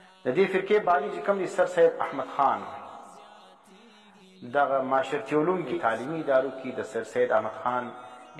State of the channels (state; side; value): identical; both; correlation 1.00